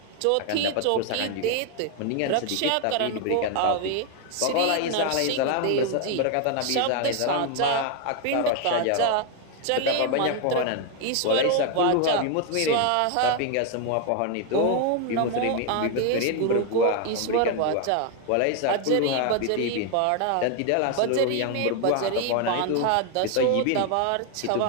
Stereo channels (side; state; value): both; different; correlation 0.00